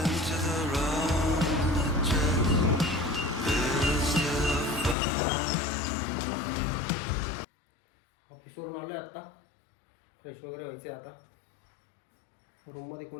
ऑफिसवरून आलो आहे आत्ता. फ्रेश वगैरे व्हायचं आहे आता. रूममध्ये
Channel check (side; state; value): right; drops out; at 5.0 s